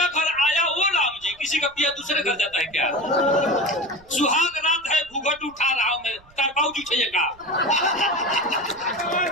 घर आया वो राम जी, किसी का पिया दूसरे घर जाता है क्या? सुहाग रात है, घूंघट उठा रहा हूं मैं, तरपाऊ जी चाहिए का?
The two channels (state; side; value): noise; right; rumble, 27 dB below the sound